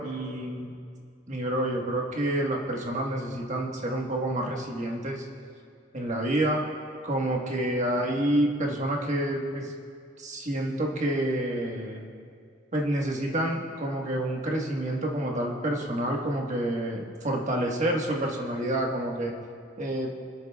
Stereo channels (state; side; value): normal; both; correlation 0.51